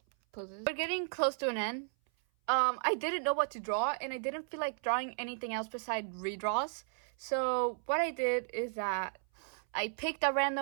poses. We're getting close to an end. I didn't know what to draw, and I didn't feel like drawing anything else besides redraws. So what I did is that I picked a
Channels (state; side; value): silent; left; 55 dB below the other